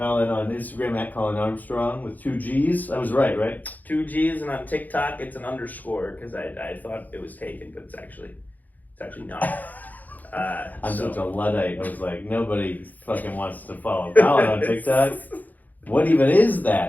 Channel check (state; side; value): late; right; 0.082 ms